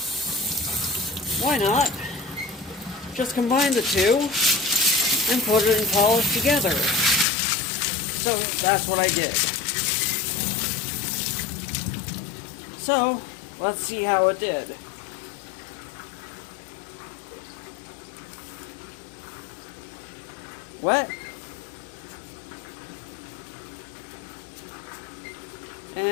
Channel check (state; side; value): drops out; right; at 7.2 s